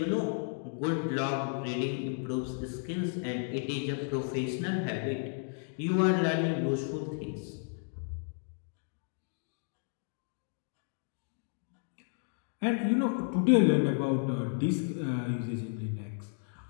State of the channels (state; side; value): silent; right; 56 dB below the other